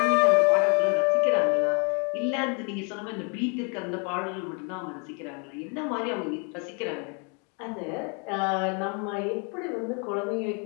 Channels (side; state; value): right; quieter; 36.0 dB